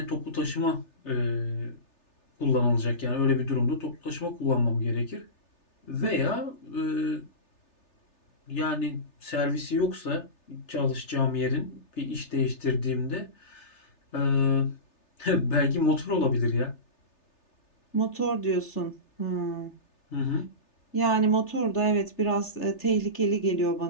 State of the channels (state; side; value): late; right; 3.3 ms